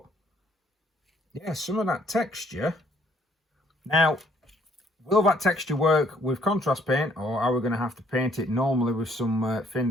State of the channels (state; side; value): normal; both; correlation 0.65